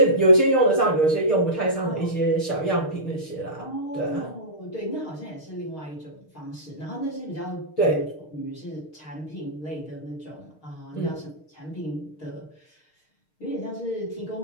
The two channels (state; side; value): late; right; 6.5 ms